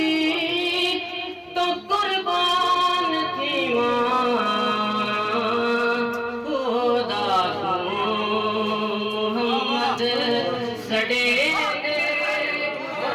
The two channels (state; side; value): identical; both; correlation 1.00